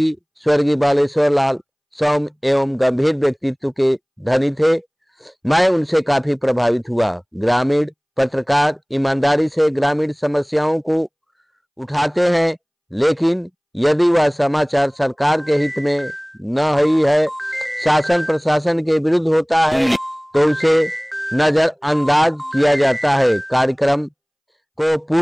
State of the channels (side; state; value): both; identical; correlation 1.00